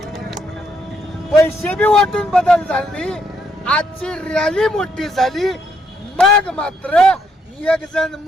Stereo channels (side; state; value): both; normal; correlation 0.73